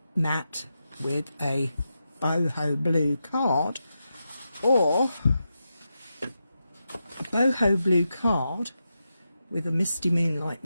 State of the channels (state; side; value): inverted; both; correlation -0.88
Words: matte with a boho blue card, or a boho blue card with a Misty Moonlight